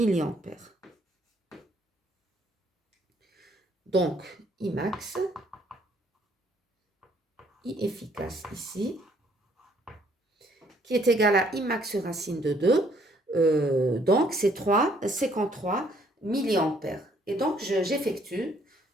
Donc, I max, I efficace ici, qui est égal à I max sur racine de 2. Donc, c'est 3,53 milliampères. Et donc, j'effectue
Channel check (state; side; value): normal; both; correlation 0.65